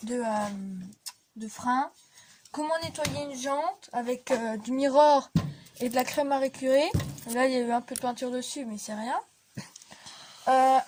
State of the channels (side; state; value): both; identical; correlation 1.00